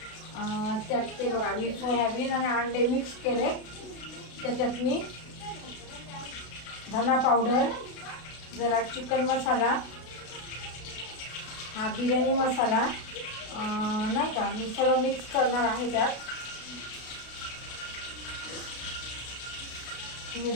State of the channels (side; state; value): right; late; 32 ms